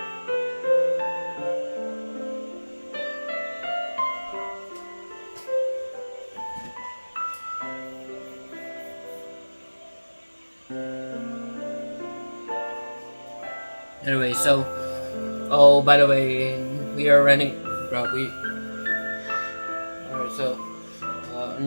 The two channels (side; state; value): both; inverted; correlation -1.00